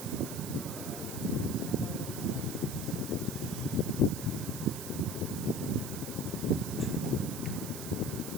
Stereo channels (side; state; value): right; noise; hiss, 8 dB below the sound